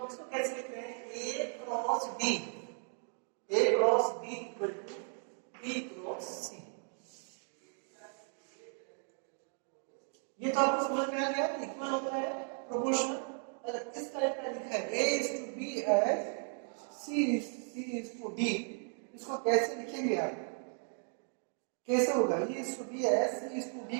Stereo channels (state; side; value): silent; left; 54 dB below the other